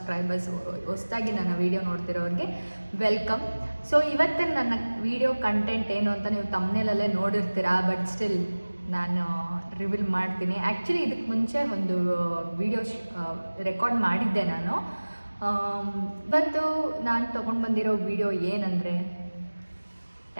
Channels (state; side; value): inverted; both; correlation -1.00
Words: ಹೊಸದಾಗಿ ನನ್ನ ವೀಡಿಯೋ ನೋಡ್ತಿರೋರಿಗೆ ವೆಲ್ಕಮ್. ಸೊ ಇವತ್ತಿನ ನನ್ನ ವೀಡಿಯೋ ಕಂಟೆಂಟ್ ಏನು ಅಂತ ನೀವು ತಮ್ನೇಲಲ್ಲೇ ನೋಡಿರ್ತೀರಾ, ಬಟ್ ಸ್ಟಿಲ್ ನಾನು ರಿವೀಲ್ ಮಾಡ್ತೀನಿ. ಆ್ಯಕ್ಚುಲಿ ಇದಕ್ಕೆ ಮುಂಚೆ ಒಂದು ವೀಡಿಯೋ ರೆಕಾರ್ಡ್ ಮಾಡಿದ್ದೆ ನಾನು. ಇವತ್ತು ನಾನು ತೊಗೊಂಡು ಬಂದಿರೋ ವೀಡಿಯೋ ಏನಂದರೆ